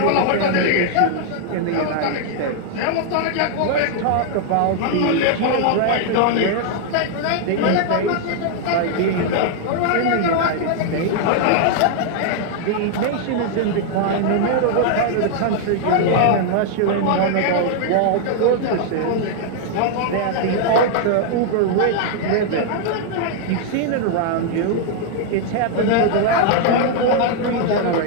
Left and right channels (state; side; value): different; both; correlation 0.00